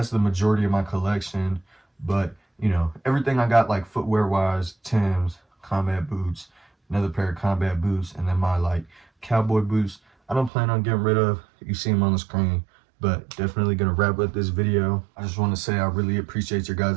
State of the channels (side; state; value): left; drops out; at 10.5 s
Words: the majority of my collection. But you know, everything I got like footwear wise, Timbs, combat boots, another pair of combat boots, and then my like cowboy boots, I don't plan on getting rid of. You see them on the screen. But definitely gonna wrap up this video. I just want to say I really appreciate your